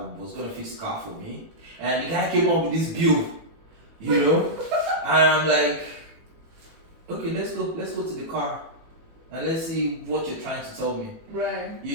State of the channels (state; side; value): late; left; 18 ms